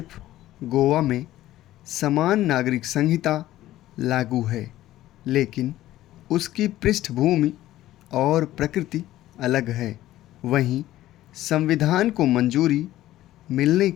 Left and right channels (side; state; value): right; quieter; 14.6 dB